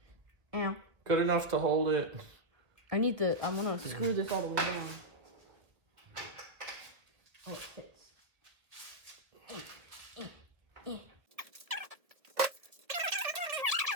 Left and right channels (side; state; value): left; late; 1.8 ms